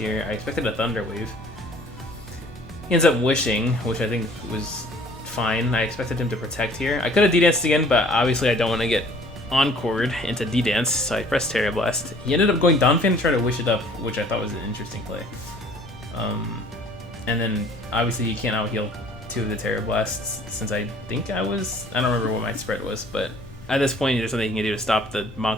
I expected a Thunder Wave. He ends up Wishing, which I think was fine. I expected him to Protect here. I could have D-Danced again, but obviously I don't want to get Encored into D-Dance, so I pressed Terra Blast. He ended up going Donphan to try to Wish it up, which I thought was an interesting play. And then obviously you can't out-heal two of the Terra Blasts, since I think I don't remember what my spread was, but at this point there's something you can do to stop the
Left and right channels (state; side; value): noise; left; rumble, 19 dB below the sound